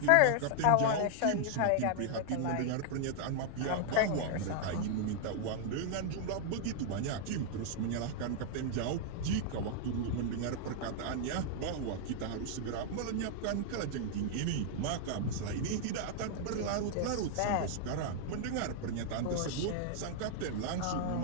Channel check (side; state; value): both; different; correlation -0.01